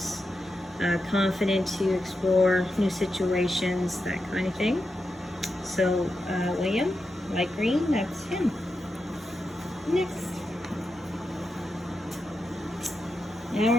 confident to explore new situations, that kind of thing. So William, light green, that's him. Next. Now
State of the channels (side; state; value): both; normal; correlation 0.88